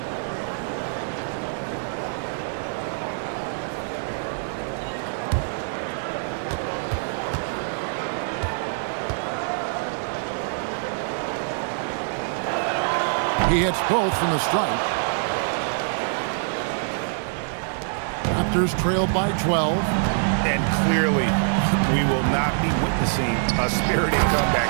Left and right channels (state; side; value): silent; left; digital silence